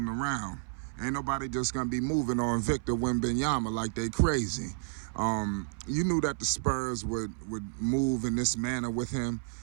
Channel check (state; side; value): silent; left; 57 dB below the other